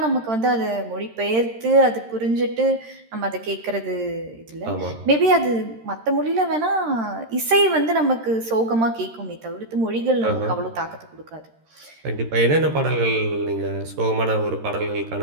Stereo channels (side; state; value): left; late; 13 ms